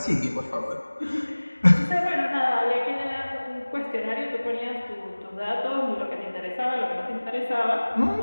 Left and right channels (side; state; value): both; inverted; correlation -1.00